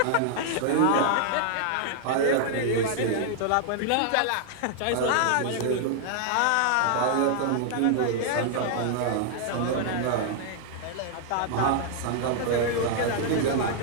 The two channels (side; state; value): both; different; correlation -0.01